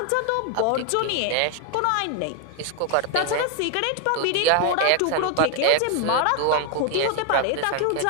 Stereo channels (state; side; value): different; both; correlation 0.01